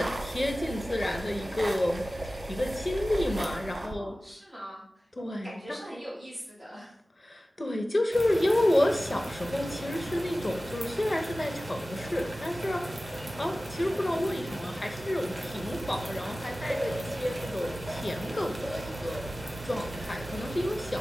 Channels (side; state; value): both; normal; correlation 0.96